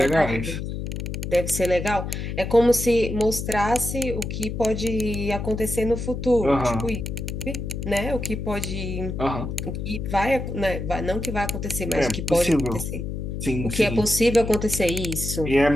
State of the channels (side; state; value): left; noise; hum, 5 dB below the sound